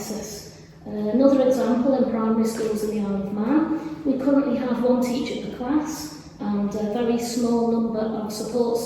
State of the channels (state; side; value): identical; both; correlation 1.00